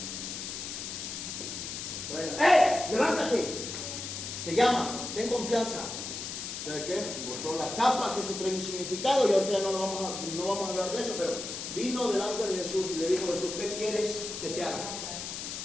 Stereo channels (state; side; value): noise; left; hiss, 6 dB below the sound